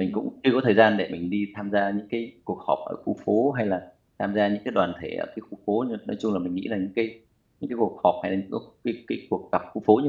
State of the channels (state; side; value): identical; both; correlation 1.00